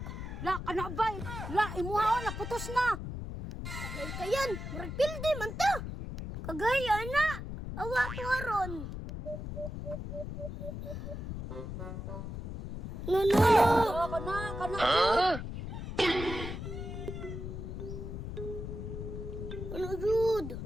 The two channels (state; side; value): noise; left; rumble, 7 dB below the sound